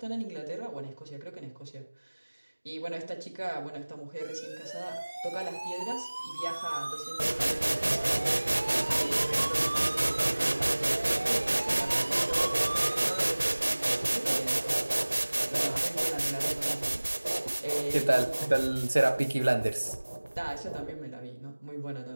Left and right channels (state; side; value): inverted; both; correlation -1.00